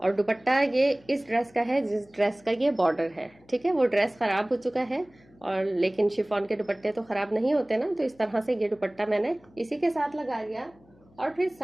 और दुपट्टा ये इस ड्रेस का है जिस ड्रेस का ये बॉर्डर है, ठीक है। वो ड्रेस खराब हो चुका है, और लेकिन शिफॉन के दुपट्टे तो खराब नहीं होते ना, तो इस तरह से ये दुपट्टा मैंने इसी के साथ लगा लिया। और फिर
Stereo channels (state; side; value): noise; left; hum, 29 dB below the sound